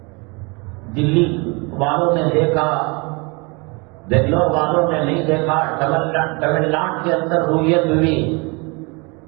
دلی والوں نے دیکھا، بنگلور والوں نے نہیں دیکھا، تمل ناڈو کے اندر رویت ہوئی،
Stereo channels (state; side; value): quieter; left; 29.2 dB